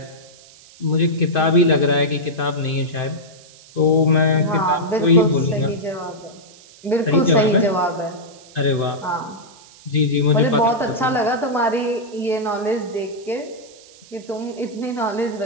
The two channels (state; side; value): noise; right; hiss, 23 dB below the sound